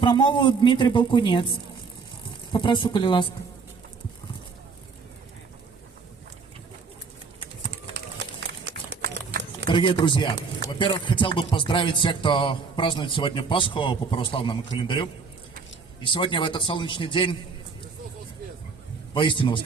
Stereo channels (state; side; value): quieter; left; 5.0 dB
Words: Дмитрий Балкунець. Попрошу, коли ласка. Дорогие друзья, во-первых, хотел бы поздравить всех, кто празднует сегодня Пасху по православному календарю. И сегодня в этот солнечный день, воистину